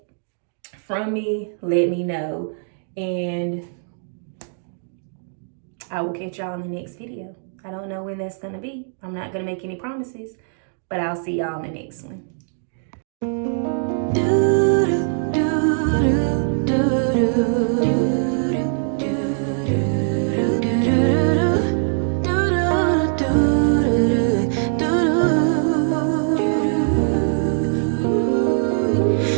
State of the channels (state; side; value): silent; left; digital silence